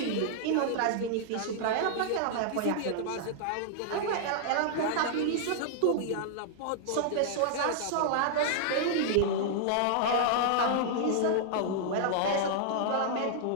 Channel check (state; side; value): different; both; correlation -0.01